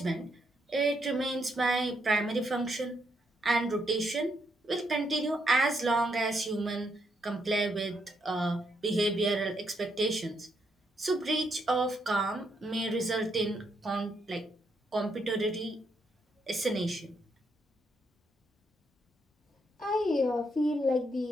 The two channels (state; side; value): normal; both; correlation 0.77